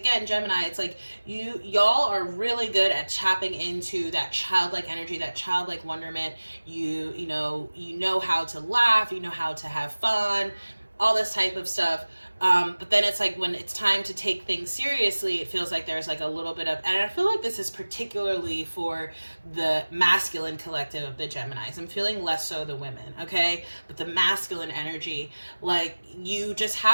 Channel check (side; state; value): both; inverted; correlation -1.00